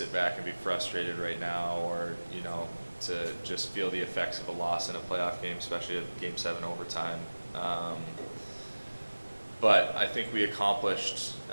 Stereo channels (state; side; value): inverted; both; correlation -1.00